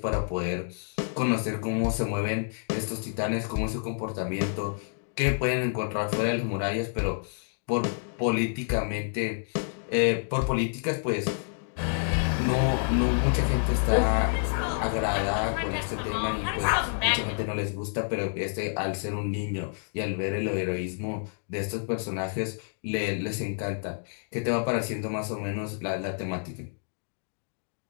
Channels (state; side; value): silent; right; digital silence